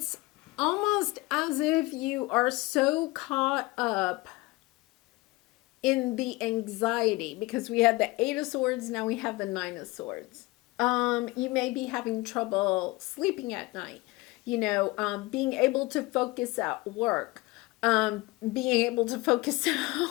almost as if you are so caught up in the anxiety, because we had the Eight of Swords, now we have the Nine of Swords. You may be having trouble sleeping at night, being able to focus at work, being able to focus at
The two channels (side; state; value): right; quieter; 22.1 dB